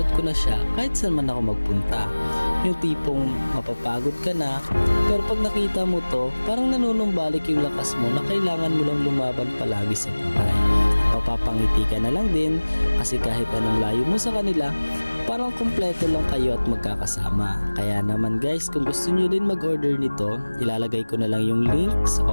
ko na siya kahit saan man ako magpunta. Yung tipong mapapagod ka na, pero pag nakita mo to, parang nanunumbalik yung lakas mo na kailangan mo lang lumaban palagi sa buhay. Papapangiti ka na lang din kasi kahit anong layo mo sa kanila, parang kompleto lang kayo at magkakasama. Kaya naman guys, kung gusto nyo din mag-order nito, ilalagay ko na lang yung link sa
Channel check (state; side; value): inverted; both; correlation -1.00